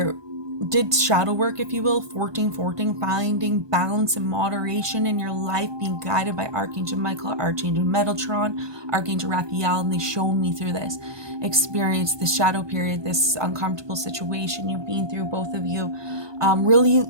did shadow work, if you will, 14, finding balance and moderation in your life, being guided by Archangel Michael, Archangel Metatron, Archangel Raphael, and they shown me through this experience, this shadow period, this uncomfortable situation you've been through, both of you, really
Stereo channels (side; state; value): left; late; 1.2 ms